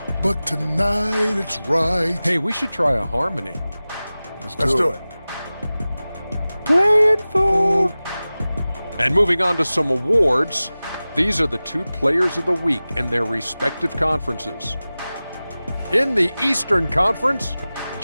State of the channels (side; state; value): both; inverted; correlation -0.97